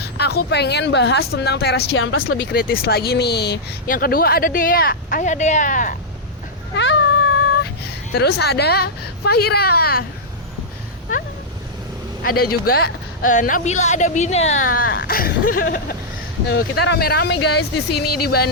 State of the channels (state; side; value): normal; both; correlation -0.08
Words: aku pengen bahas tentang Teras Ciamplas lebih kritis lagi nih. Yang kedua ada Dea. Ayo Dea. Hai. Terus ada Fahira. Ada juga Nabila, ada Bina. Kita rame-rame guys di sini di